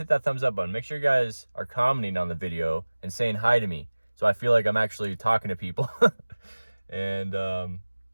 that thumbs up button. Make sure you guys are commenting on the video and saying hi to me, so I feel like I'm actually talking to people. And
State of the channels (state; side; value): inverted; both; correlation -1.00